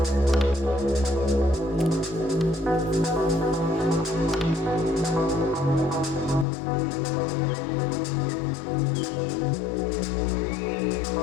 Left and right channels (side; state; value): right; drops out; at 6.5 s